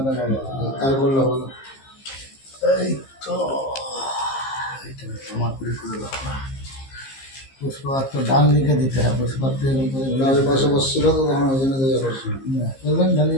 রে বাবা। তাই বললো বলো, এই তো এইটা জমা করে দাও না। পুষ্পাত্র ডান দিকে দিতে হয়, পুষ্পাত্র পাশে বসছিল তো, তখন ওই জন্য বলবেন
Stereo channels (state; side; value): late; right; 15 ms